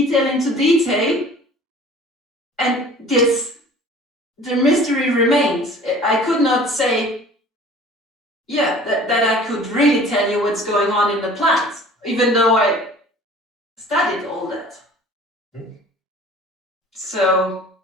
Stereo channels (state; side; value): normal; both; correlation 0.47